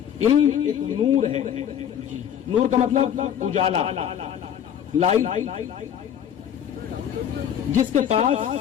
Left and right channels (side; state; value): right; quieter; 9.3 dB